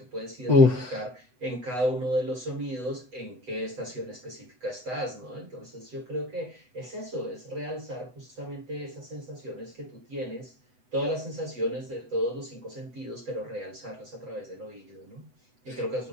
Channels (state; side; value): late; left; 8.0 ms